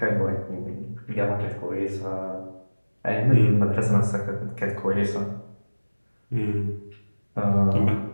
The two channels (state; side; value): inverted; both; correlation -1.00